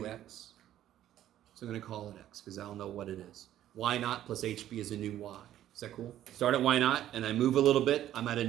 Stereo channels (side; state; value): left; quieter; 12.3 dB